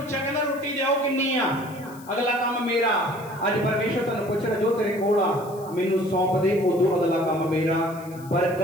ਕਹਿੰਦਾ ਰੋਟੀ ਦਿਓ ਕਿੰਨੀ ਆ, ਅਗਲਾ ਕੰਮ ਮੇਰਾ। ਅੱਜ ਪਰਮੇਸ਼ਰ ਤੁਹਾਨੂੰ ਪੁੱਛ ਰਿਹਾ, ਜੋ ਤੇਰੇ ਕੋਲ ਆ ਮੈਨੂੰ ਸੌਂਪ ਦੇ, ਉਦੋਂ ਅਗਲਾ ਕੰਮ ਮੇਰਾ।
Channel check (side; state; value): left; noise; hiss, 22 dB below the sound